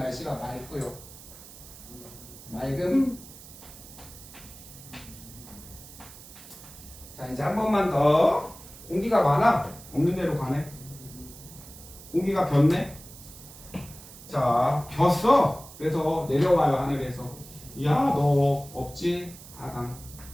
맑고요. 맑음. 자, 이제 한 번만 더. 공기가 많아? 없는 데로 가네. 공기가 변네? 자, 변어. 그래서 내려와요, 하늘에서. 야, 너 없지? 하강.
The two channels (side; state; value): right; noise; hiss, 18 dB below the sound